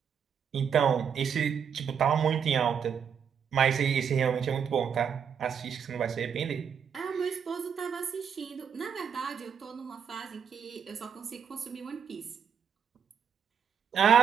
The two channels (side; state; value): left; quieter; 7.5 dB